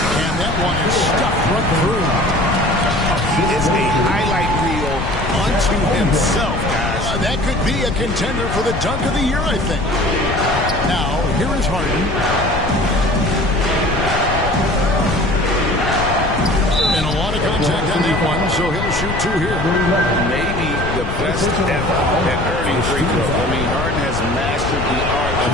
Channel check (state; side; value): noise; left; rumble, 5 dB below the sound